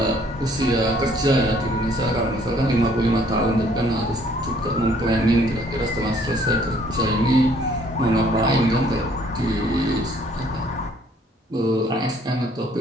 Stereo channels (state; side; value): normal; both; correlation 0.61